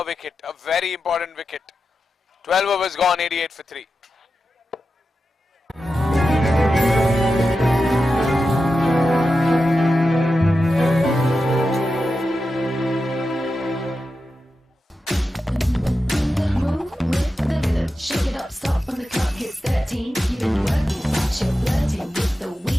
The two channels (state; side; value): normal; both; correlation 0.91